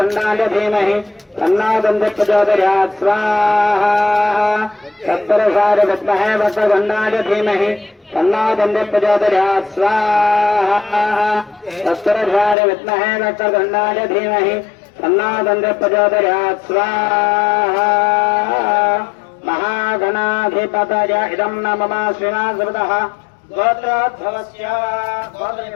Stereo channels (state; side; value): drops out; right; at 12.6 s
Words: धीमहि तन्नो दन्ति प्रचोदयात् स्वाहा तत्पुरुषाय विद्महे वक्रतुण्डाय धीमहि तन्नो दन्ति प्रचोदयात् स्वाहा तत्पुरुषाय विद्महे वक्रतुण्डाय धीमहि तन्नो दन्ति प्रचोदयात् स्वाहा महागणाधिपतय इदं न मम श्रीनाथः गोत्रोद्भवस्य